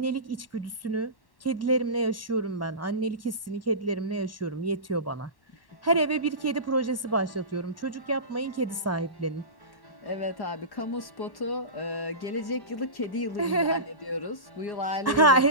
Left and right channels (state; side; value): late; right; 1.1 ms